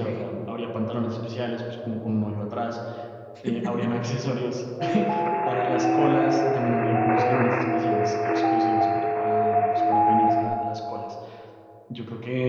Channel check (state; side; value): identical; both; correlation 1.00